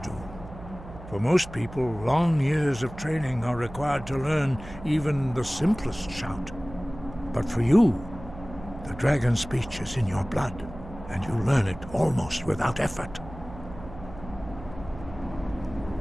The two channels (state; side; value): noise; right; hum, 15 dB below the sound